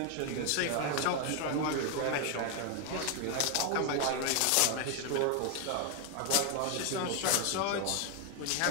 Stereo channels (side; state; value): both; different; correlation 0.00